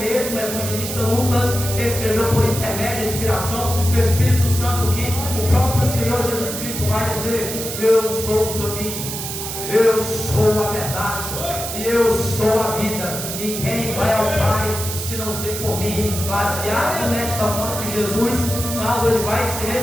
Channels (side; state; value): right; noise; hiss, 6 dB below the sound